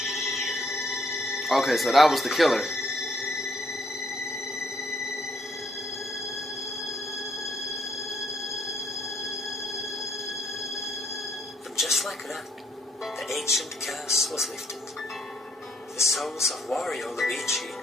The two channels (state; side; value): normal; both; correlation 0.69